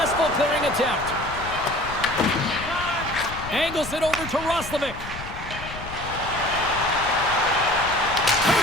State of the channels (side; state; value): left; noise; rumble, 12 dB below the sound